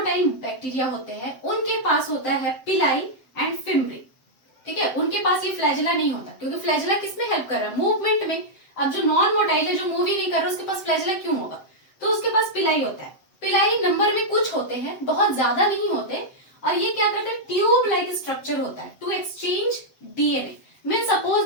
बैक्टीरिया होते हैं उनके पास होता है पिलाई एंड फिम्ब्री, ठीक है, उनके पास ये फ्लैजेला नहीं होता, क्योंकि फ्लैजेला किसमें हेल्प कर रहा है? मूवमेंट में। अब जो नॉन मोटाइल है, जो मूव ही नहीं कर रहा, उसके पास फ्लैजेला क्यों होगा? तो उसके पास पिलाई होता है। पिलाई नंबर में कुछ होते हैं, बहुत ज्यादा नहीं होते, और ये क्या करते हैं? ट्यूब लाइक स्ट्रक्चर होता है to exchange DNA. Mean suppose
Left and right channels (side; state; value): right; late; 7.8 ms